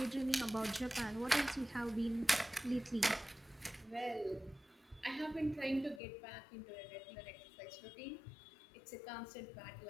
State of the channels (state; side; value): drops out; right; at 6.0 s